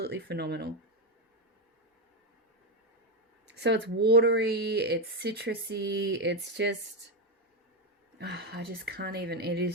phenomenal. So it's watery, it's citrusy, it's just, I just can't even, it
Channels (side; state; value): both; normal; correlation 0.08